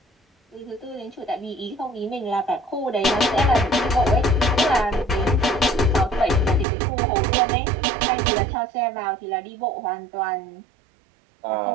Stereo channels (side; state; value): left; drops out; at 6.7 s